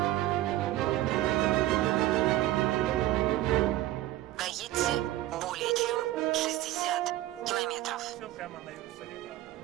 прямо на Иерусалим.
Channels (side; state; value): left; quieter; 15.3 dB